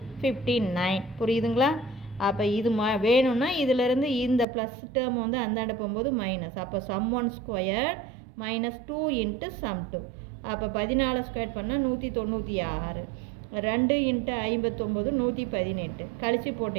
59. புரியுதுங்களா? அப்போ இது வேணும்னா இதிலேருந்து இந்த ப்ளஸ் டேர்ம் வந்து அந்தாண்ட போகும்போது மைனஸ். அப்போ சம் 1² மைனஸ் 2 இன்ட்டு சம் 2. அப்போ 14² பண்ணால் 196. 2 இன்ட்டு 59 118. கழித்து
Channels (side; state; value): left; drops out; at 4.5 s